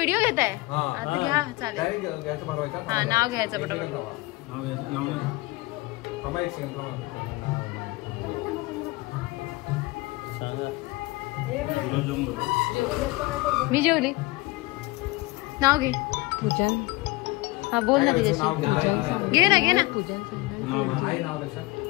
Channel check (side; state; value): right; quieter; 20.8 dB